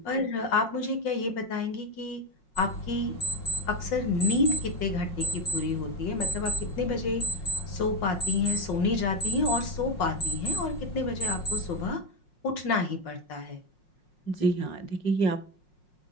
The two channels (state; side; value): late; right; 5.5 ms